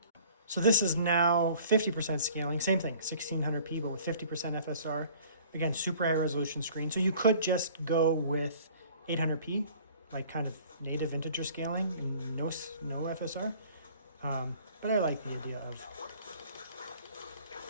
So this is now 50% scaling. Same thing, 1600p, but with 50% FSR. Again, super high resolution screen. So you could just go with 800p, like kind of native integer scaling and no FSR. But I like the idea of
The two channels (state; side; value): inverted; both; correlation -0.51